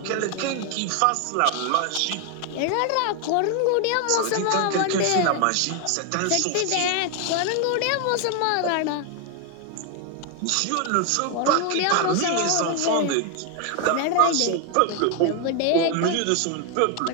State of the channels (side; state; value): both; different; correlation 0.01